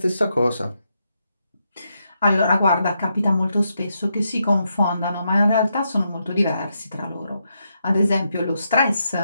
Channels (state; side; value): inverted; both; correlation -0.82